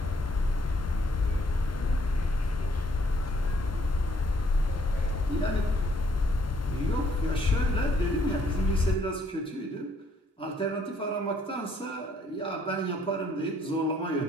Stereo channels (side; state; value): both; normal; correlation 0.67